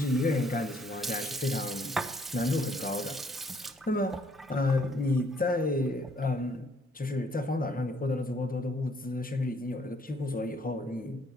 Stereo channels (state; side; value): normal; both; correlation 0.65